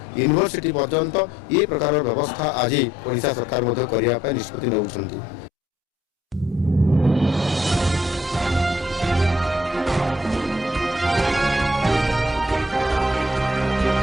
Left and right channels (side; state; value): both; normal; correlation 0.66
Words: पर्यंत ये प्रकार व्यवस्था आज ओडिशा सरकार करने निष्पत्ति नौछंती।